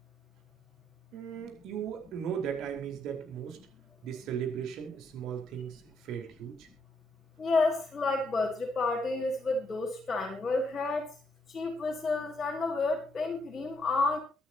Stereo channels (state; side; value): normal; both; correlation 0.75